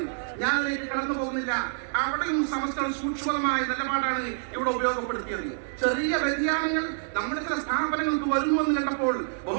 ഞാൻ അതിലേക്ക് കടന്നു പോകുന്നില്ല. അവിടെയും സമസ്ത സൂക്ഷ്മമായ നിലപാടാണ് ഇവിടെ ഉപയോഗപ്പെടുത്തിയത്. ചെറിയ വ്യതിയാനങ്ങൾ നമ്മുടെ ചില സ്ഥാപനങ്ങൾക്ക് വരുന്നുവെന്ന് കണ്ടപ്പോൾ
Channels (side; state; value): left; silent; digital silence